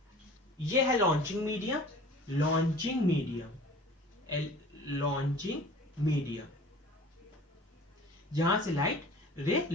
ये है लॉन्चिंग मीडियम, लॉन्चिंग मीडियम जहां से लाइट रे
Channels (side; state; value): both; normal; correlation 0.44